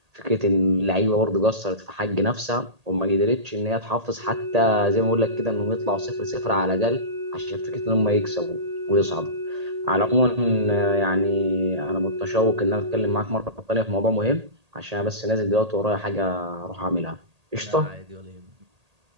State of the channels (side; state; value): left; late; 1.8 ms